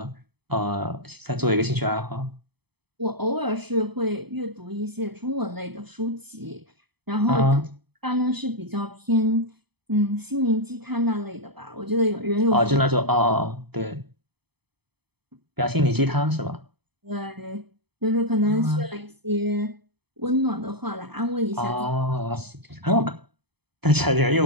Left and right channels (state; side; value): late; left; 0.98 ms